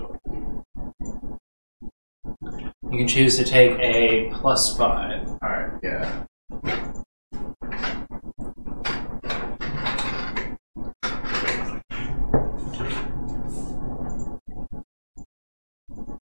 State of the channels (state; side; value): inverted; both; correlation -1.00